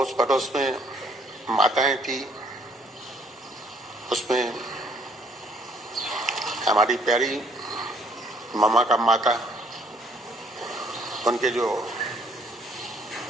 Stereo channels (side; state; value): both; normal; correlation 0.64